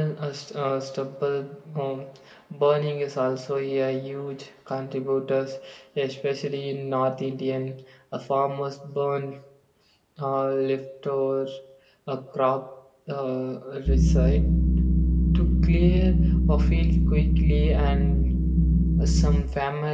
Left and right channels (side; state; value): both; identical; correlation 1.00